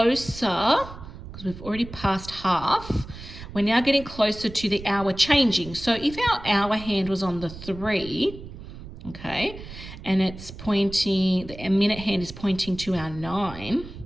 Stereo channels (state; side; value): noise; right; rumble, 14 dB below the sound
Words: because we've already passed half, we're now getting closer to the hour changing. So if our hour hand was on the 3, okay, and it's pointing, the minute hand is pointing to our 9,